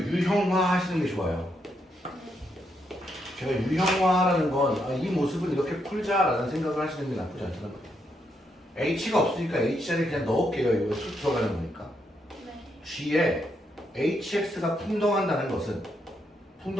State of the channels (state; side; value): normal; both; correlation 0.79